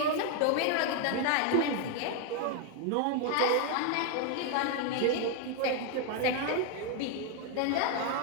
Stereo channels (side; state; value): both; different; correlation 0.01